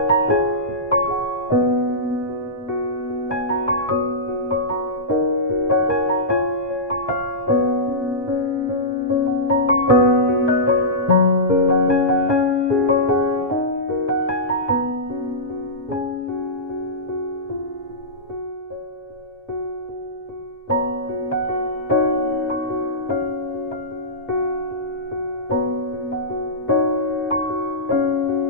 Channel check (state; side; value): normal; both; correlation -0.16